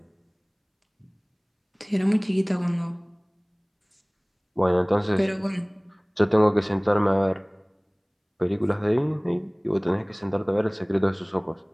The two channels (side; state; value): both; identical; correlation 1.00